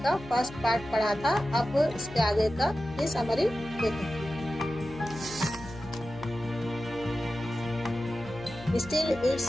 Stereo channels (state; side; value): noise; left; hum, 16 dB below the sound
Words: का फर्स्ट पार्ट पढ़ा था। अब इसके आगे का ये समरी देखें। Still it's